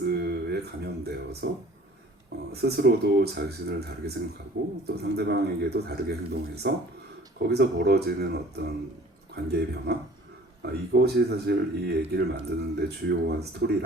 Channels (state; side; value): normal; both; correlation 0.49